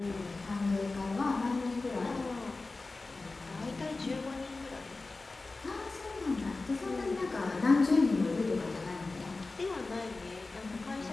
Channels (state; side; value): quieter; right; 3.5 dB